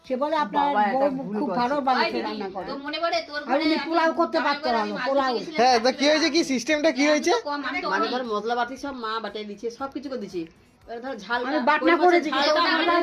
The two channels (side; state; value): both; identical; correlation 1.00